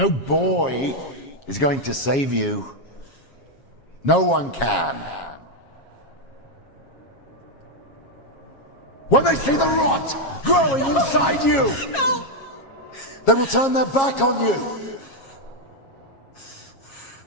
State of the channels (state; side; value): late; right; 7.4 ms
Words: boy is going to save you. No one can. When they see the rot growing inside you, No! they will turn their back on you.